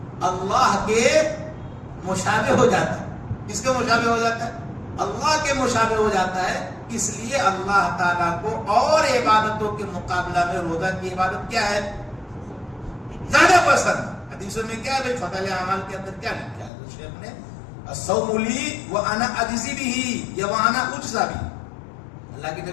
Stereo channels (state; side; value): drops out; right; at 16.7 s